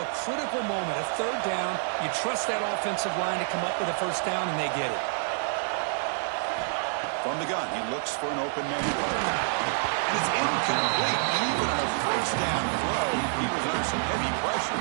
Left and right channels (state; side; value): silent; left; digital silence